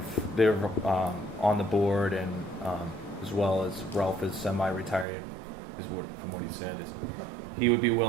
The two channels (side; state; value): left; drops out; at 5.1 s